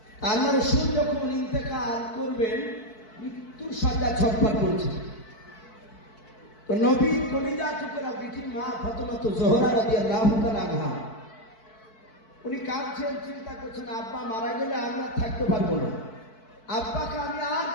আল্লাহ রসুল যখন ইন্তেকাল করবেন, মৃত্যুর সজ্জা ছটফট করেছে। তো নবী কলিজা টুকরা বিটি মা ফাতেমা জোহরা রাদিয়াল্লাহু তাআলা আনহা, উনি কাঁদছেন, চিন্তা করছেন আব্বা মারা গেলে আমি আর থাকতে পারবো না, আব্বাকে আমি আর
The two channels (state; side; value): late; right; 4.6 ms